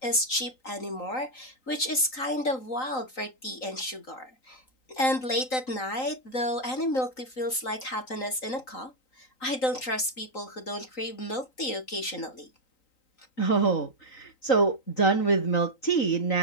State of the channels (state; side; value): late; right; 3.9 ms